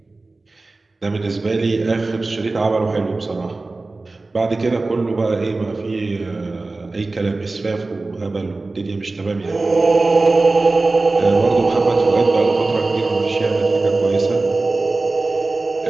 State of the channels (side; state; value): left; quieter; 3.3 dB